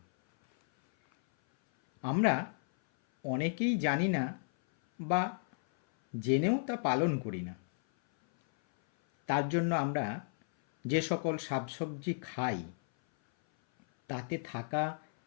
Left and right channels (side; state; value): right; silent; 56 dB below the other